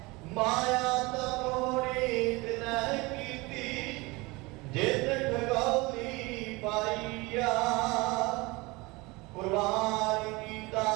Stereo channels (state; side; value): quieter; left; 24.0 dB